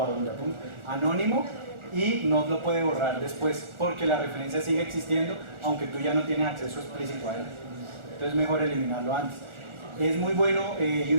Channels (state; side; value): late; left; 1.4 ms